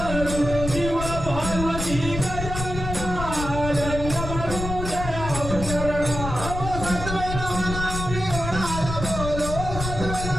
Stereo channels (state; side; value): noise; left; rumble, 6 dB below the sound